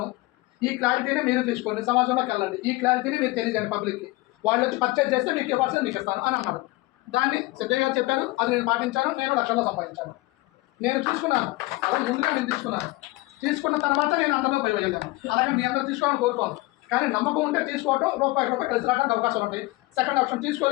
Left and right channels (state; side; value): quieter; right; 20.8 dB